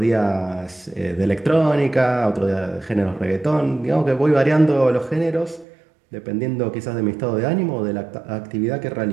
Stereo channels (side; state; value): left; drops out; at 5.7 s